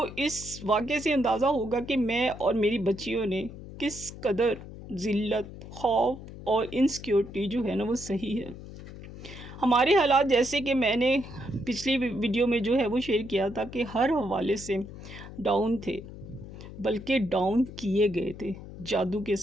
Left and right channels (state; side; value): noise; left; hum, 13 dB below the sound